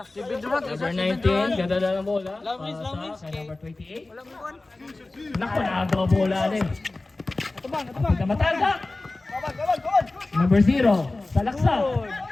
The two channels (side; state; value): right; quieter; 3.1 dB